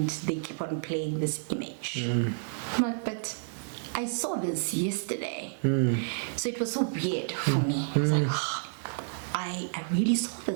they keep on playing this image. I'm like, but I saw this yesterday. So it was so weird for me. I was like, I really saw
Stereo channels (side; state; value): left; silent; digital silence